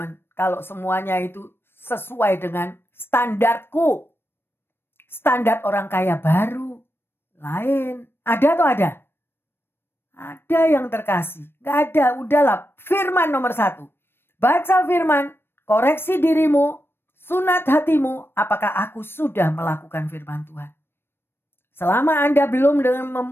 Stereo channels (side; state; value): right; late; 0.11 ms